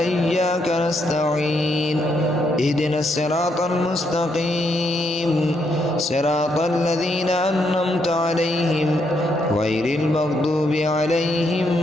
نستعين. اهدنا الصراط المستقيم صراط الذين أنعمت عليهم غير المغضوب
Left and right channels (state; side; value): normal; both; correlation 0.76